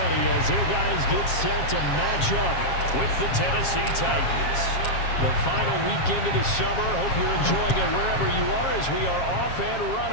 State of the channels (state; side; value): late; right; 7.4 ms